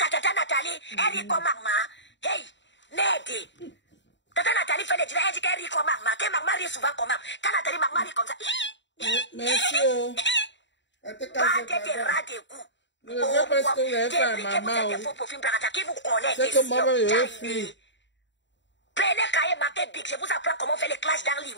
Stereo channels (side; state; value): right; late; 0.53 ms